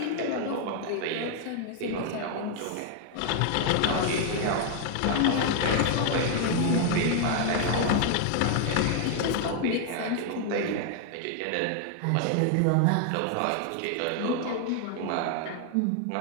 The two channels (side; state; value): both; different; correlation 0.00